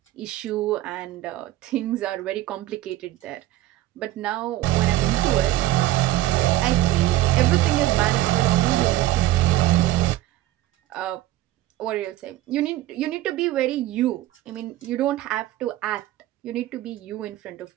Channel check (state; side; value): quieter; left; 15.2 dB